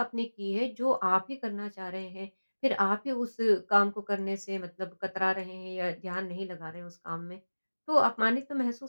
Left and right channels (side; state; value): both; inverted; correlation -1.00